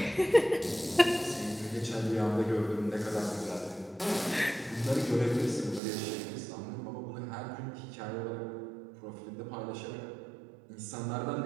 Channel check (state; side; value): drops out; left; at 5.8 s